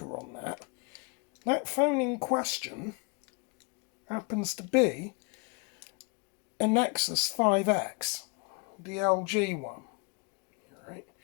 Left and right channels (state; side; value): quieter; right; 32.2 dB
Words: on that. That phone in question happens to be a Nexus 5X, the LG one. Right,